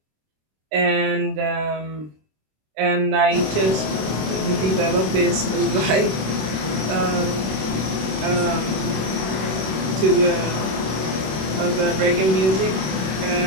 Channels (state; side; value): late; left; 26 ms